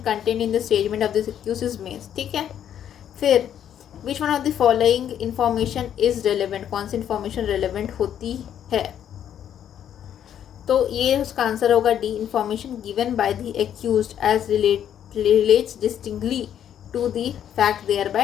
content in the statement of this accuse is made, ठीक है। फिर which one of the following information is relevant, कौन सी information relevant होती है, तो ये उसका आंसर होगा D, information given by the accused as relates distinctly to the fact देयर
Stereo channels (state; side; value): quieter; right; 9.8 dB